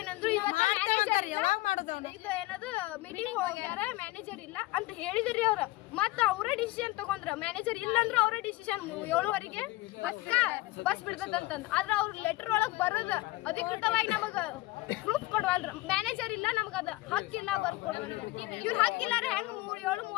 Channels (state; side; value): quieter; right; 19.7 dB